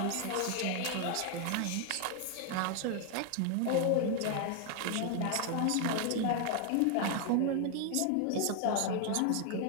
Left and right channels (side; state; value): both; different; correlation 0.01